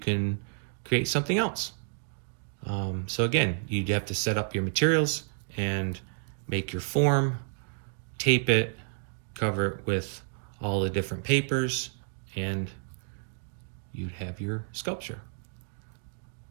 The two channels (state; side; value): silent; left; digital silence